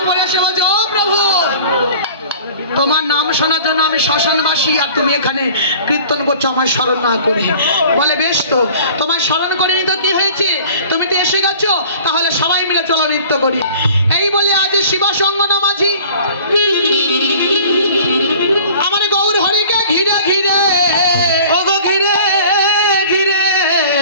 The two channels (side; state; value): both; inverted; correlation -0.45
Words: পরে এসে বলছে, ও প্রভু, তোমার নাম শোনার জন্য আমি শ্মশানবাসী, আর তুমি এখানে কীর্তন করছো আমায় স্মরণ না করে। বলে বেশ, তো তোমায় স্মরণ করিনি তো কি হয়েছে, তুমি তো এসে গেছো, তাহলে সবাই মিলে চলো নৃত্য করি। এই বলে আজ শিবাসঙ্গনা মাঝি আমার গৌর হরিকে ঘিরে ঘিরে, ওগো ঘিরে ঘিরে,